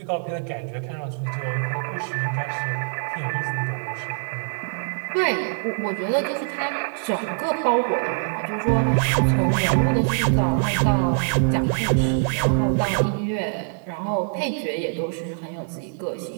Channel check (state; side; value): silent; left; 63 dB below the other